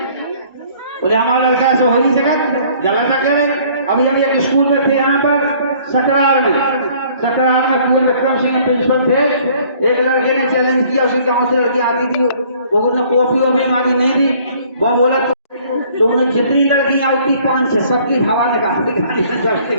बोले हमारा लड़का ऐसा हो नहीं सका, गलत कह रहे। अभी हम एक स्कूल में थे यहाँ पर सकरार में कुंवर विक्रम सिंह प्रिंसिपल थे। एक लड़के ने चैलेंज किया, उसके गांव से लड़की आती थी, वो कॉपी वॉपी मांगी, नहीं दी। वो बोला तुमने जितनी लड़की आई थी 5-6 सबकी हवा निकाल दी।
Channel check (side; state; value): both; inverted; correlation -0.57